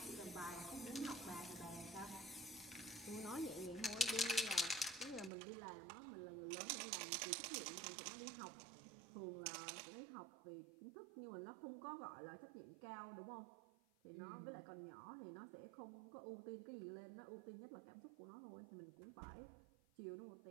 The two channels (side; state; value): left; drops out; at 5.3 s